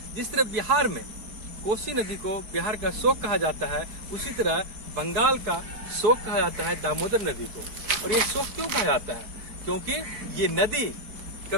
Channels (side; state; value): left; late; 4.7 ms